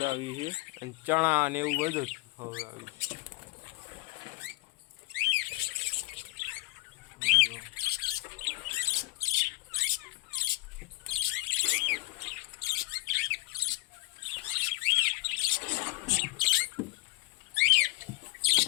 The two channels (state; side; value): quieter; right; 23.8 dB